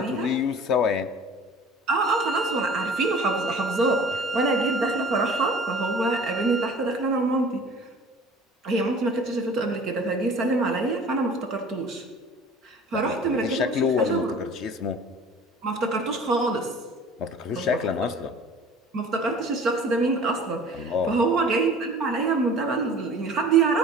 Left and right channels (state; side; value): normal; both; correlation 0.45